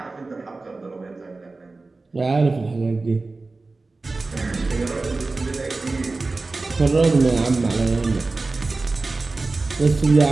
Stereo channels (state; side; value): quieter; left; 3.5 dB